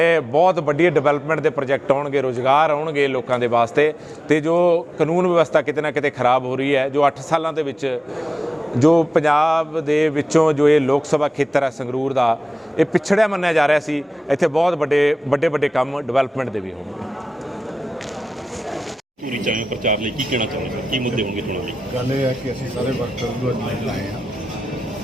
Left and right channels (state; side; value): normal; both; correlation 0.95